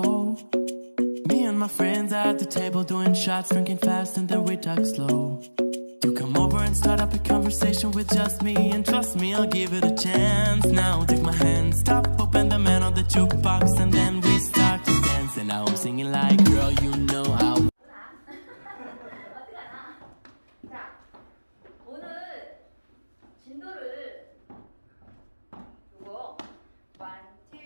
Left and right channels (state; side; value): inverted; both; correlation -1.00